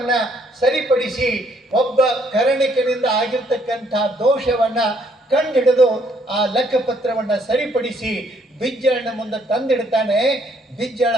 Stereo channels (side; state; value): both; normal; correlation 0.67